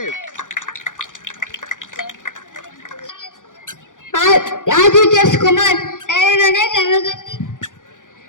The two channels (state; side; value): late; right; 0.88 ms